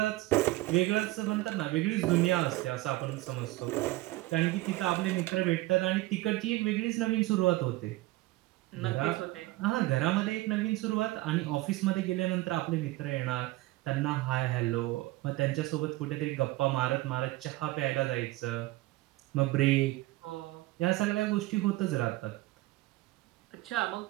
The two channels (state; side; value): quieter; left; 18.9 dB